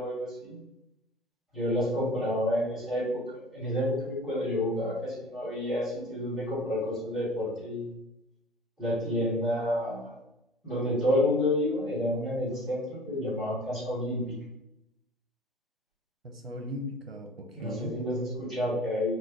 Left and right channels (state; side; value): normal; both; correlation 0.45